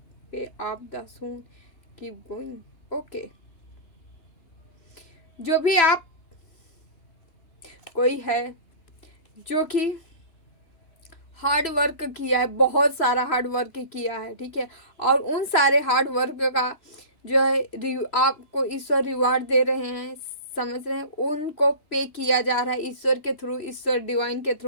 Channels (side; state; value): right; late; 3.0 ms